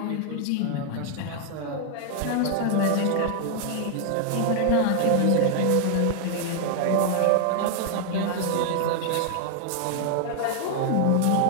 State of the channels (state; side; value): different; both; correlation 0.00